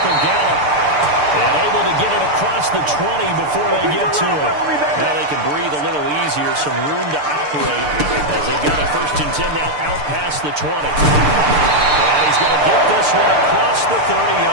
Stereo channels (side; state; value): left; late; 6.8 ms